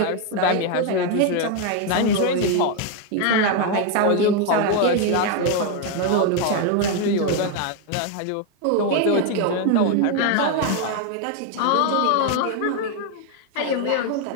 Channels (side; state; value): both; different; correlation 0.01